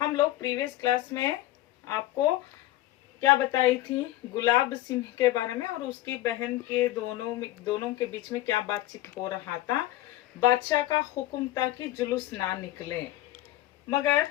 हम लोग प्रीवियस क्लास में आपको क्या बताई थी, गुलाब सिंह के बारे में और उसकी बहन के दोनों के बीच में क्या बातचीत हो रहा था। बादशाह का हुक्म था कि जुलूस ना निकले, मगर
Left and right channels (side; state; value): right; quieter; 15.5 dB